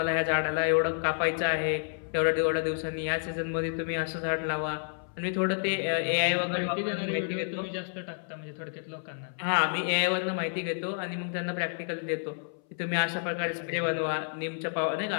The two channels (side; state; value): right; silent; 58 dB below the other